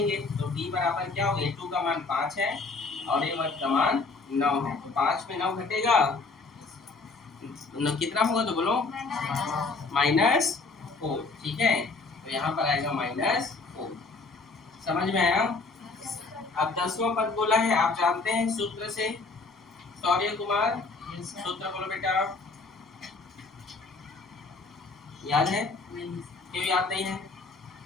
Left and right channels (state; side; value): quieter; right; 3.9 dB